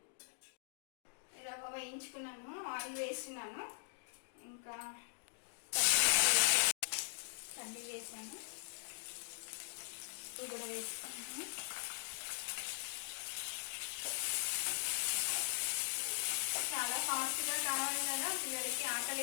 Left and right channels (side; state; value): right; silent; digital silence